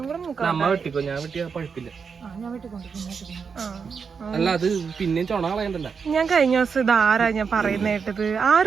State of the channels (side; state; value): left; quieter; 5.8 dB